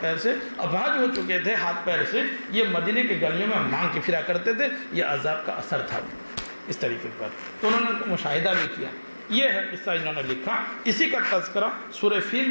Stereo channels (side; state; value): both; inverted; correlation -1.00